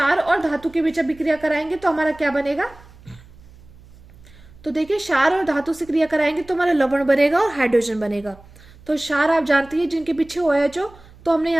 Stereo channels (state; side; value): noise; right; hum, 23 dB below the sound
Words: और धातु के बीच अभिक्रिया कराएंगे तो हमारा क्या बनेगा? तो देखिए, क्षार और धातु से क्रिया कराएंगे तो हमारा लवण बनेगा और हाइड्रोजन बनेगा। तो क्षार आप जानती है जिनके पीछे OH हो, तो हमने